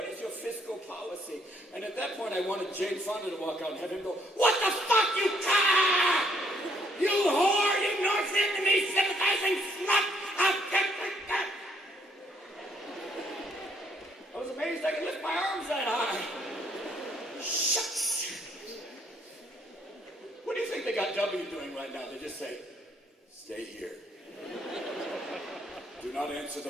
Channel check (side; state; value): both; normal; correlation 0.68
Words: is your fiscal policy? And at that point, I wanted Jane Fonda to walk out and have him go, "What the fuck, you cock! You whore! You North Vietnamese sympathizing slut! I was amazed I could lift my arms that high. Shucks! What do you think they got W doing right now? They just say, "Stay here. Do not answer